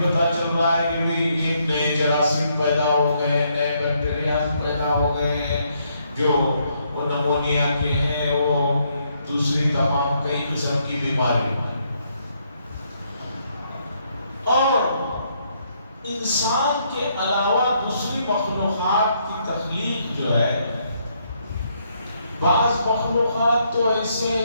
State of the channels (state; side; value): inverted; both; correlation -0.73